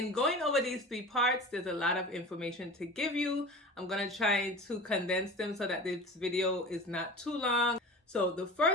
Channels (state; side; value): normal; both; correlation 0.35